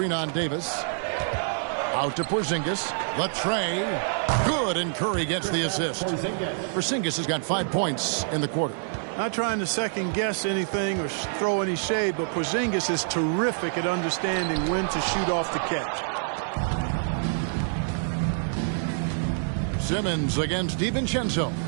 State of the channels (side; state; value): left; silent; 61 dB below the other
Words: on Davis. Out to Porzingis. The tray. Good, and Curry gets the assist. Porzingis has got 5 points in the quarter. Not trying to second-guess anything or throw any shade, but Porzingis is terrific at understanding when to shoot off the catch. Simmons against DiVincenzo.